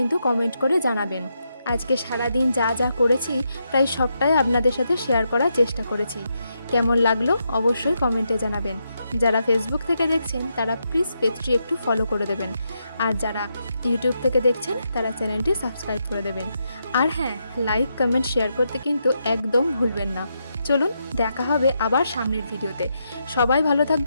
কমেন্ট করে জানাবেন। আজকে সারাদিন যা যা করেছি প্রায় সবটাই আপনাদের সাথে শেয়ার করার চেষ্টা করেছি। কেমন লাগলো অবশ্যই কমেন্টে জানাবেন। যারা ফেসবুক থেকে দেখছেন তারা প্লিজ পেজটি একটু ফলো করে দেবেন, আর যারা ইউটিউব থেকে দেখছেন তারা চ্যানেলটি সাবস্ক্রাইব করে দেবেন। আর হ্যাঁ, লাইক, কমেন্ট, শেয়ার করতে কিন্তু একদম ভুলবেন না। চলুন দেখা হবে আবার সামনের ভিডিওতে। সবাই ভালো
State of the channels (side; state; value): both; inverted; correlation -0.82